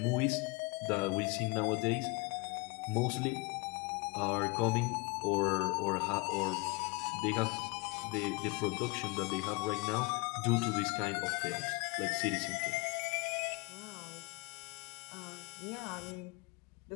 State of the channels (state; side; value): quieter; right; 27.3 dB